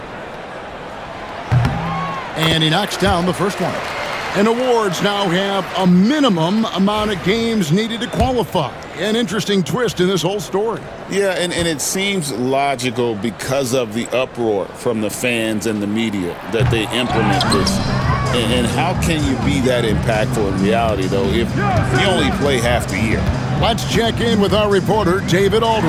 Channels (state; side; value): identical; both; correlation 1.00